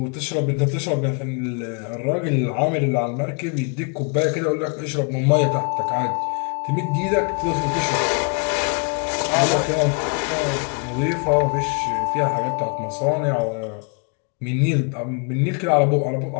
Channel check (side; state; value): right; quieter; 36.8 dB